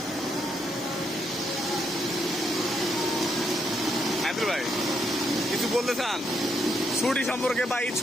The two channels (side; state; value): both; normal; correlation 0.77